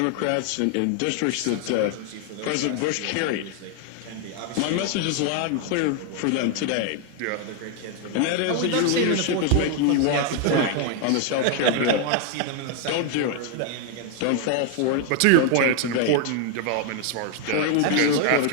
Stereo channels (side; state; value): both; different; correlation 0.00